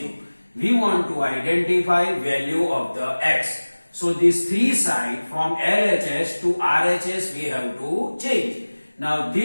We want to identify value of the x. So this 3 side from LHS to RHS we have to change. Now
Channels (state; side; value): inverted; both; correlation -1.00